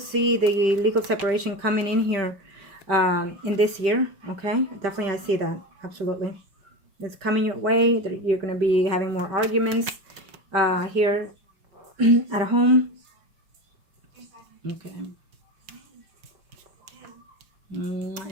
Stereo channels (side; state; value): left; late; 5.1 ms